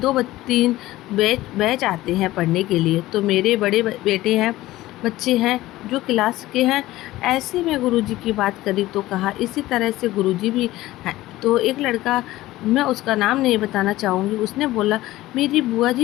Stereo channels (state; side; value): quieter; right; 16.8 dB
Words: 2-3 बैच आते हैं पढ़ने के लिए। तो मेरे बड़े बेटे हैं, बच्चे हैं जो क्लास के हैं। ऐसे में गुरुजी की बात करी तो कहा इसी तरह से गुरुजी भी हैं। तो एक लड़का, मैं उसका नाम नहीं बताना चाहूँगी, उसने बोला मेरी बुआ